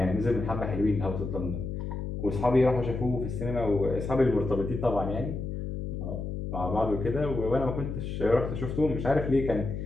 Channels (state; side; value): noise; left; hum, 5 dB below the sound